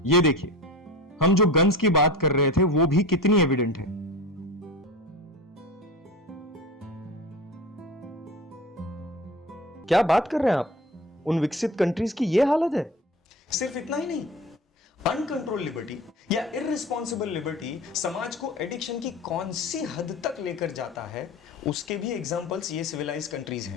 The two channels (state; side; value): normal; both; correlation 0.33